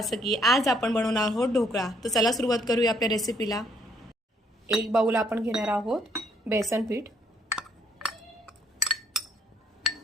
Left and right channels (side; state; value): both; normal; correlation 0.68